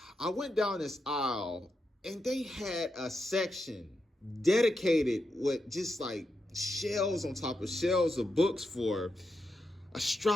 I went down this aisle and they had a section dedicated with just like shelves on top of shelves of books for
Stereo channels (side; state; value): both; normal; correlation 0.86